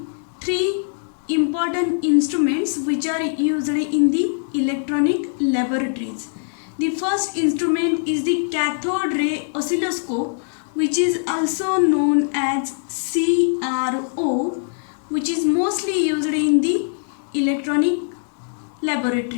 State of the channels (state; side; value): silent; right; digital silence